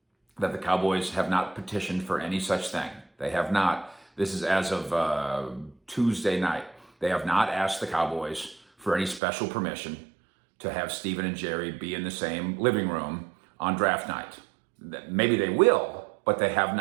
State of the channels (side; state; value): left; drops out; at 9.2 s